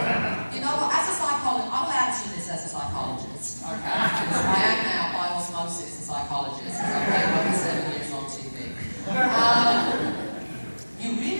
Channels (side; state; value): both; inverted; correlation -1.00